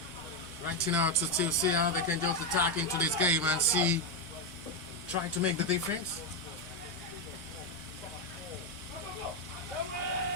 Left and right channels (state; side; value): normal; both; correlation 0.06